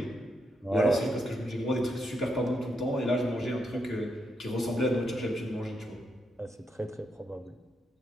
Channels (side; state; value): both; normal; correlation 0.81